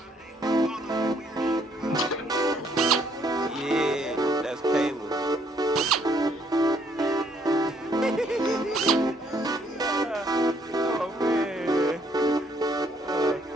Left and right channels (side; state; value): both; normal; correlation 0.67